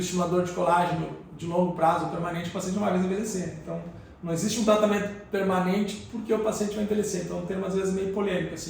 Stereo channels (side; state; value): both; identical; correlation 1.00